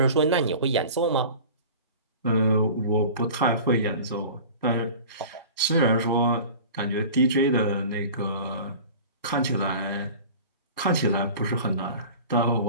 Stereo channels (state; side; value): inverted; both; correlation -0.39